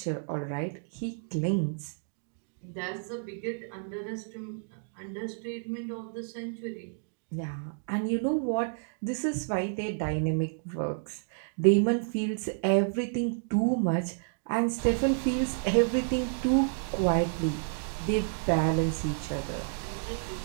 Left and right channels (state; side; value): silent; left; digital silence